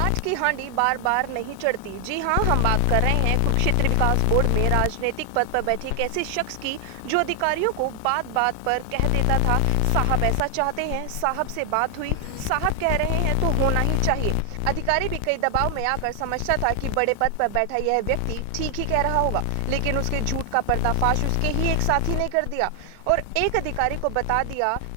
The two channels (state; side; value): different; both; correlation 0.00